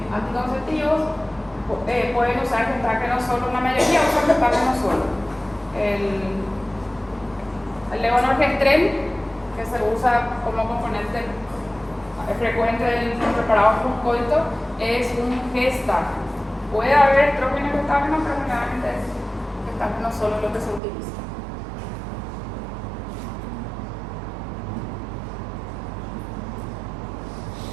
anticonceptivos, pueden usar gestágeno solo, la mayoría usan gestágeno solo. El levonorgestrel, que se usa como componente frecuente del preparado postcoito, es un gestágeno. Puede haber estrógeno y gestágeno, pero generalmente es gestágeno solo lo que se utiliza.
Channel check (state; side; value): drops out; left; at 20.8 s